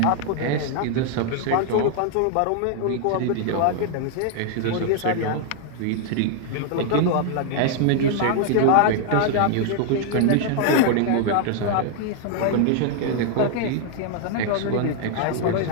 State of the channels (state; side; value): different; both; correlation 0.00